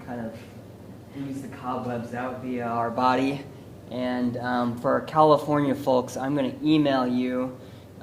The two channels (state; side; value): identical; both; correlation 1.00